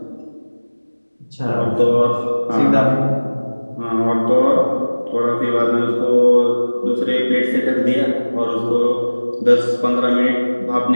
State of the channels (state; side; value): inverted; both; correlation -1.00